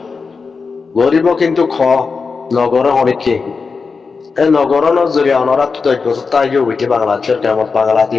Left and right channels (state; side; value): quieter; right; 4.8 dB